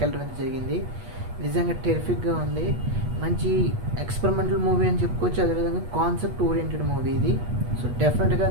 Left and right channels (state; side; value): late; left; 8.3 ms